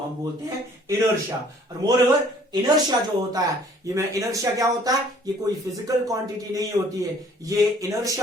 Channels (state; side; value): normal; both; correlation 0.57